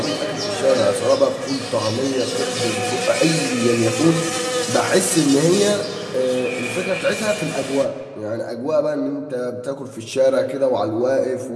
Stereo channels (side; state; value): both; identical; correlation 1.00